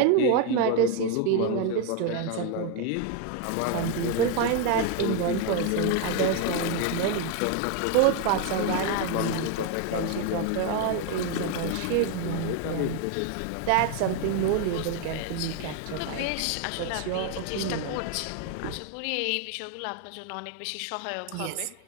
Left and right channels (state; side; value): different; both; correlation 0.01